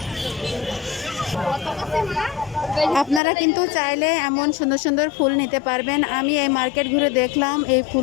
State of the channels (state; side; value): drops out; right; at 3.2 s